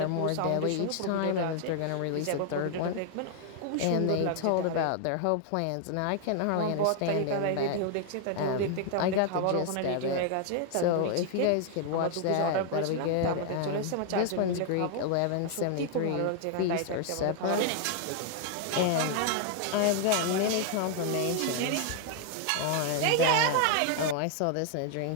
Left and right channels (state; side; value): different; both; correlation 0.00